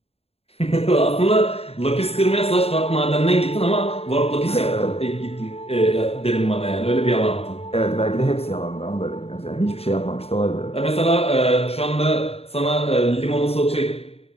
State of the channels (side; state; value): right; late; 0.29 ms